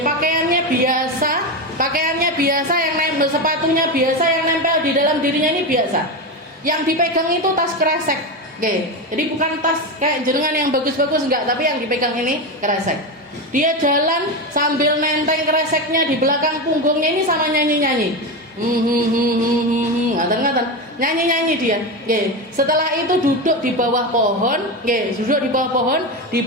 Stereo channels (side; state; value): both; normal; correlation 0.16